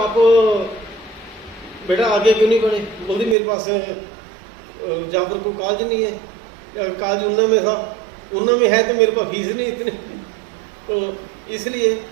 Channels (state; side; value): drops out; left; at 3.4 s